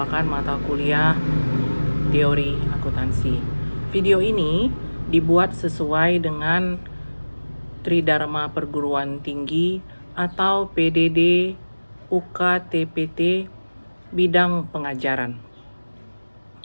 mata kuliah teori akuntansi. Video ini dibuat sesuai dengan Tridharma Perguruan Tinggi atau PDD UKTPT bidang pengajaran.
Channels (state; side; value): inverted; both; correlation -1.00